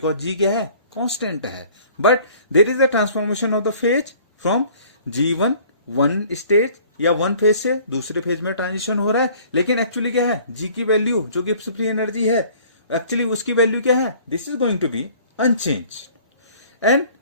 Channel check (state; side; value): inverted; both; correlation -0.53